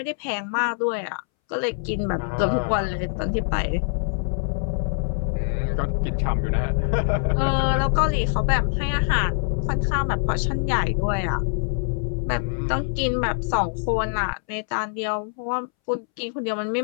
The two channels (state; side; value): silent; right; 62 dB below the other